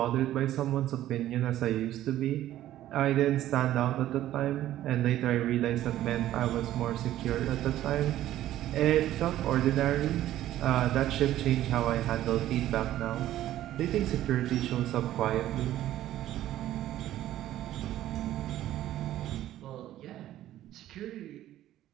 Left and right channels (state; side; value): quieter; left; 13.4 dB